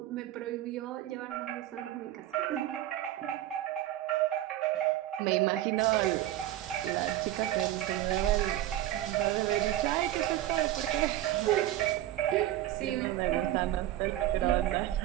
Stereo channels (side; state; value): left; quieter; 13.9 dB